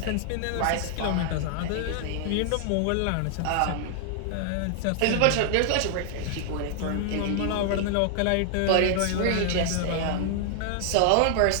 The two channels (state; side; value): different; both; correlation 0.00